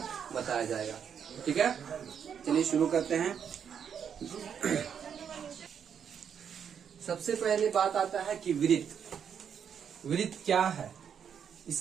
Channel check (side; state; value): left; quieter; 7.8 dB